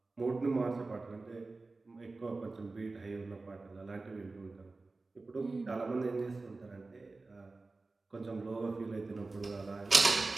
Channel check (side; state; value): left; quieter; 3.5 dB